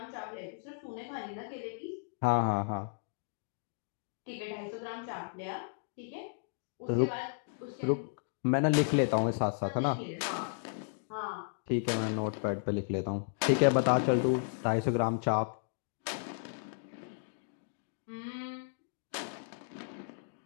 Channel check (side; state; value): right; silent; digital silence